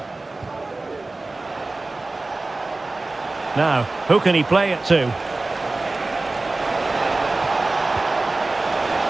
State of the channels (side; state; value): left; quieter; 3.2 dB